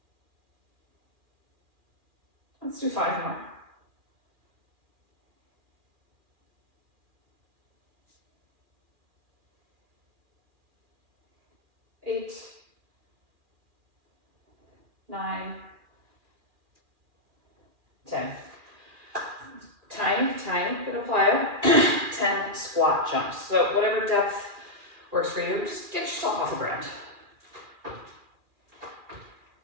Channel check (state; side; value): late; left; 2.4 ms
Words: Let's do 5 more. 8, 9, 10. Tiny bit of plyo. 10 squat jumps. So whatever depth works for you, just get yourself off the ground.